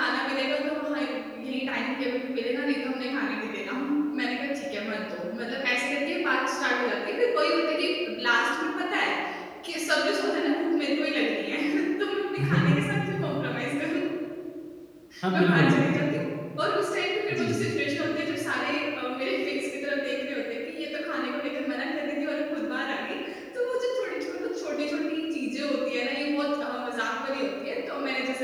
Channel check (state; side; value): identical; both; correlation 1.00